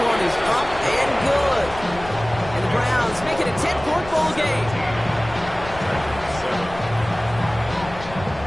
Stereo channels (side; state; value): left; noise; rumble, 14 dB below the sound